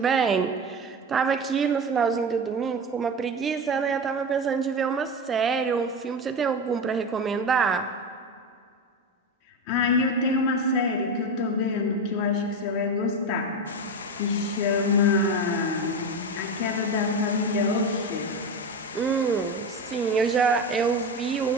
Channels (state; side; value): normal; both; correlation 0.21